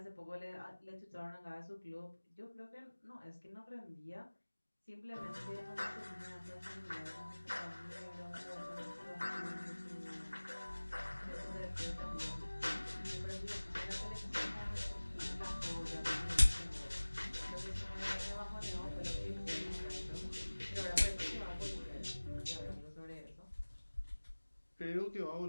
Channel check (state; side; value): inverted; both; correlation -1.00